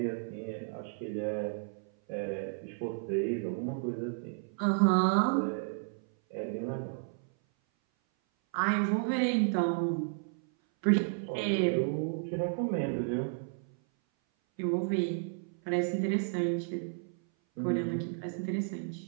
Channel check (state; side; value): silent; left; 56 dB below the other